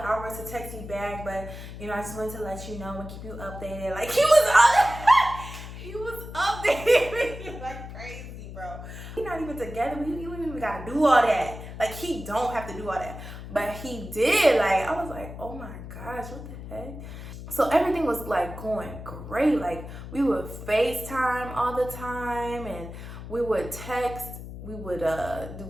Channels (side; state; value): left; noise; hum, 11 dB below the sound